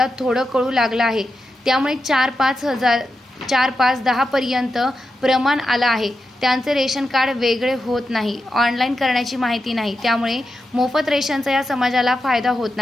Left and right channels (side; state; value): both; normal; correlation 0.88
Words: थोडं कळू लागलं आहे, त्यामुळे 4-5-10 पर्यंत प्रमाण आलं आहे। त्यांचे रेशन कार्ड वेगळे होत नाही, ऑनलाईन करण्याची माहिती नाही, त्यामुळे मोफत रेशनचा या समाजाला फायदा होत